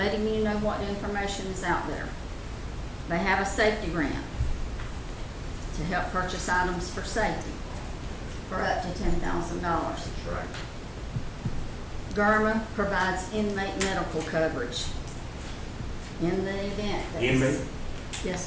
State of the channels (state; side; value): identical; both; correlation 1.00